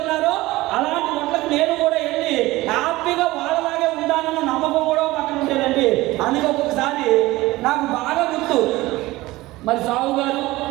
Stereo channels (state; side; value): quieter; left; 18.9 dB